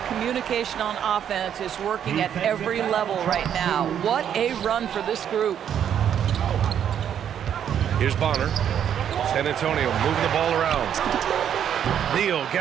communication on offense is working at every level right now. What a run for this group. Here's Bonner. San Antonio moving the ball around. Neal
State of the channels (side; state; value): left; quieter; 9.2 dB